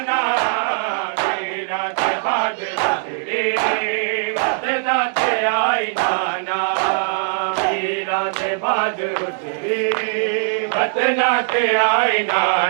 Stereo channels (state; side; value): silent; left; digital silence